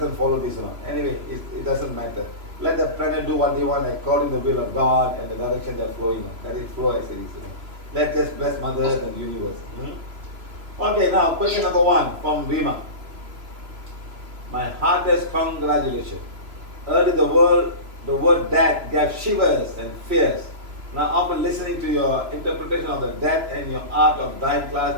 follow this one. Anyway, it doesn't matter. Let the planet do what they want according to the will of God and the direction they're flowing on. Let it flow as it is, you know. Let's just bless Mother Earth and the universe. Okay, now question number 1 from Rima. My heartiest congratulations. Early the word death gave shivers and fears. Now after listening to your interpretation of the death and your art of dying class,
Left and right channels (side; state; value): left; late; 3.0 ms